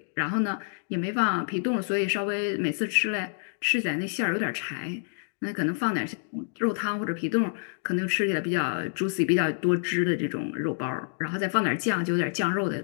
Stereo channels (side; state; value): right; silent; digital silence